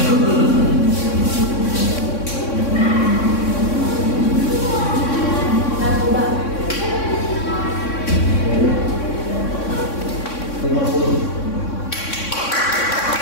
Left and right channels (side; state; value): right; late; 3.6 ms